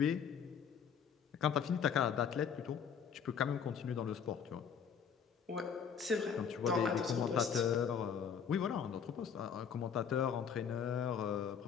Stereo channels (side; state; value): right; quieter; 7.2 dB